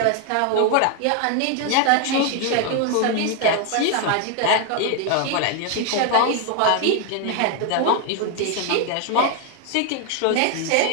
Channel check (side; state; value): both; different; correlation 0.01